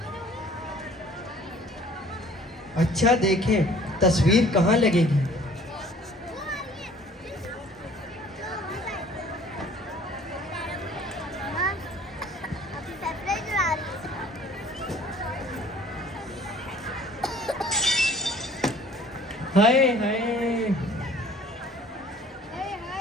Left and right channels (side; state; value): both; normal; correlation 0.53